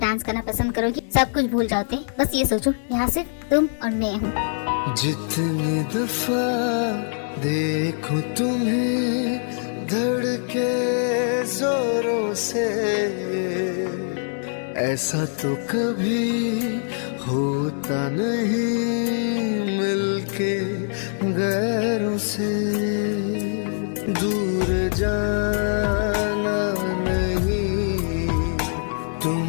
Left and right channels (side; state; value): right; silent; digital silence